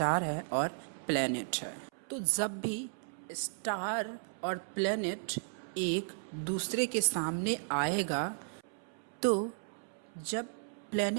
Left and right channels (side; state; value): left; silent; 55 dB below the other